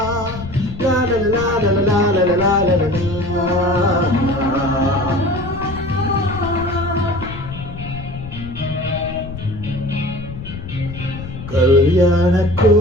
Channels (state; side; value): noise; left; rumble, 11 dB below the sound